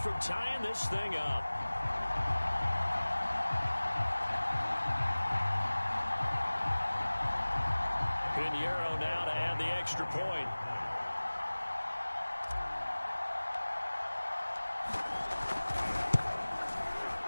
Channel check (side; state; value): both; inverted; correlation -1.00